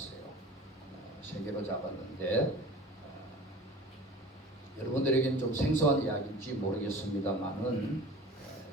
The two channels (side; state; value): both; normal; correlation 0.41